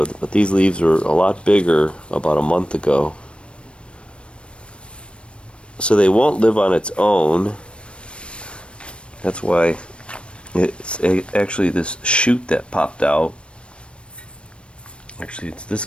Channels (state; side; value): late; right; 0.058 ms